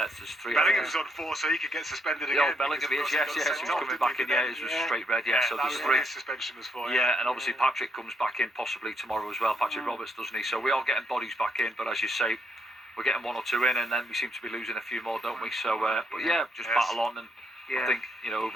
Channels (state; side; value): normal; both; correlation 0.76